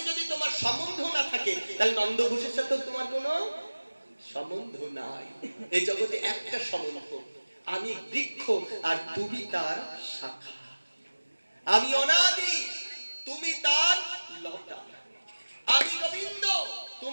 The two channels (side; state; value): both; inverted; correlation -1.00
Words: যদি তোমার সম্বন্ধ না থাকে তাহলে নন্দঘোষের সাথে তোমার কোনো সম্বন্ধ নাই। এই জগতে একটা সম্বন্ধ, আমি বৃক্ষ আর তুমি তার শাখা, আমি অনাদি তুমি তার লতা, আমি গোবিন্দ